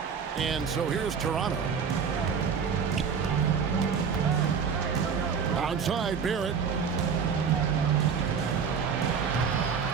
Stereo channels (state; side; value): quieter; left; 6.4 dB